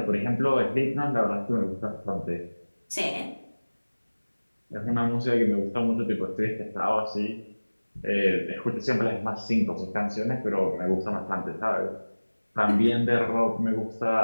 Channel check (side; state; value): both; inverted; correlation -1.00